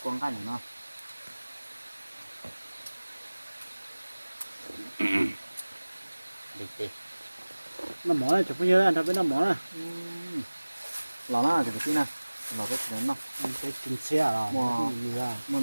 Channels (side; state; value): both; inverted; correlation -1.00